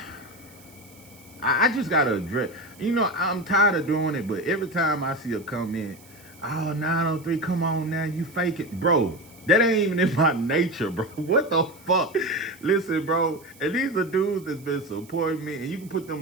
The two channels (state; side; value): noise; right; hiss, 24 dB below the sound